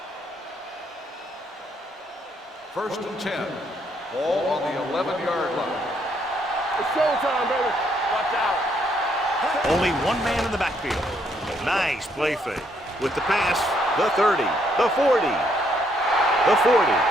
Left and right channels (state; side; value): normal; both; correlation 0.71